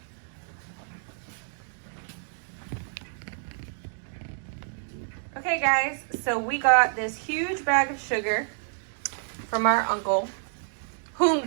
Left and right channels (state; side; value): silent; left; digital silence